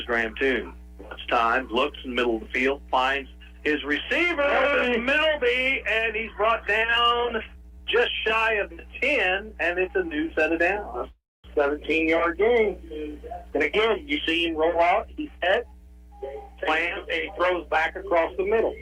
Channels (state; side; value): identical; both; correlation 1.00